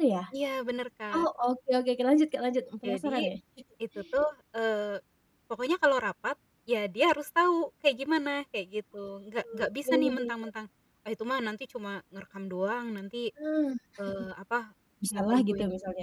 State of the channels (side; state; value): both; identical; correlation 1.00